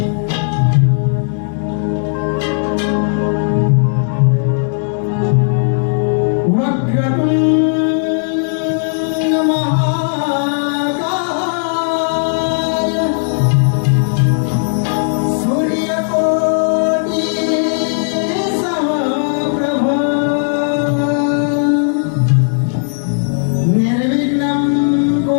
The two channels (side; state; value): right; silent; digital silence